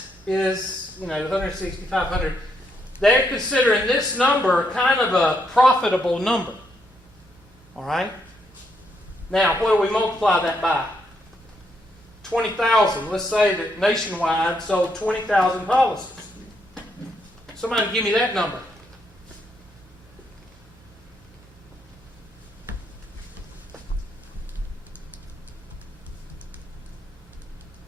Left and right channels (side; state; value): both; normal; correlation 0.77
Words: is, 160, 500. They're considering this number kind of a profitable number. All right? Now, what do we multiply that by? 20,000. Let's say that Nationwide sold 20,000 policies. Somebody give me that number.